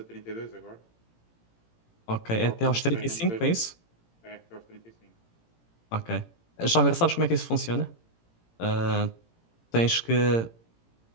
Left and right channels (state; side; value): late; right; 18 ms